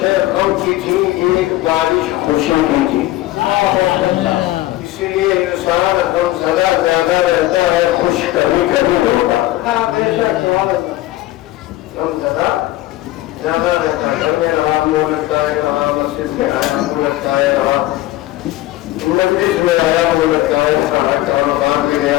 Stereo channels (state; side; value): quieter; right; 15.9 dB